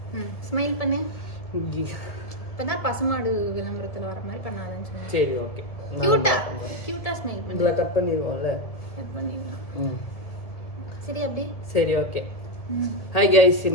ஸ்மைல் பண்ணு. இப்பதான் பசுமாடு விளம்பரத்துல வர மாதிரி பண்ணாதன்னு சொன்னேன். சரி ஓகே. கியூட்டா ஸ்மைல் பண்ணு. இதெல்லாம் கட் பண்ணிடுவோம்ல. கட் பண்ணிடலாம். சரி அப்படி. சரி ஓகே. ஹாய் கைஸ்,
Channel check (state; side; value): late; right; 1.7 ms